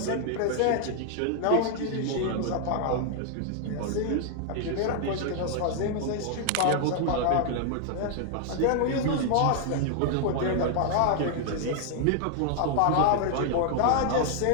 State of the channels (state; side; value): different; both; correlation 0.00